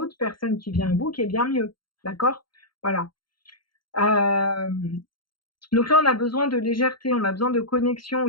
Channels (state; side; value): late; right; 0.72 ms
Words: personne qui vient à vous qui est bien mieux. D'accord? Voilà. Euh, donc là, on a besoin de légèreté, on a besoin de connexion